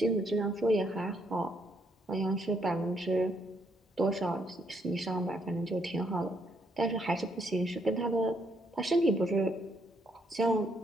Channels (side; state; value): both; normal; correlation 0.73